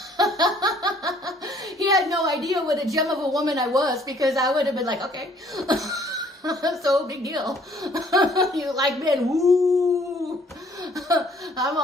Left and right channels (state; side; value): normal; both; correlation 0.60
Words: He had no idea what a gem of a woman I was, because I would have been like, okay. So big deal. You like men? Woo. I'm